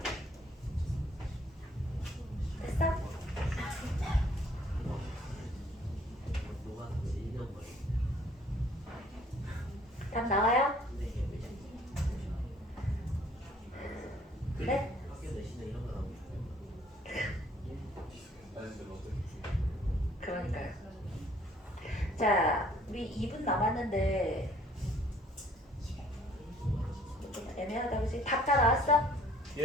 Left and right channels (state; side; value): normal; both; correlation 0.59